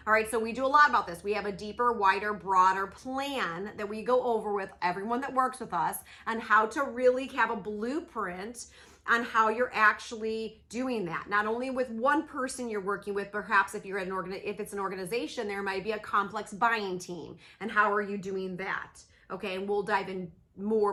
All right, so we do a lot about this. We have a deeper, wider, broader plan that we go over with everyone that works with us on how to really have a blueprint on how you're actually doing that. Not only with one person you're working with, perhaps if you're if it's an organization, there might be a complex buying team. And how are you doing that? Okay, and we'll dive in more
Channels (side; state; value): both; identical; correlation 1.00